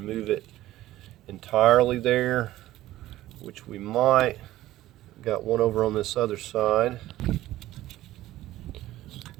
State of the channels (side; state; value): left; quieter; 15.2 dB